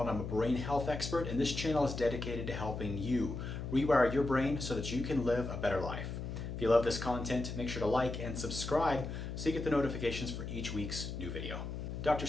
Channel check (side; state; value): left; noise; hum, 6 dB below the sound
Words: I'm a brain health expert, and this channel is dedicated to helping you rewire your brain so that you can live a better life. If you love this content, make sure to like and subscribe so you get the notifications for each week's new video. Dr.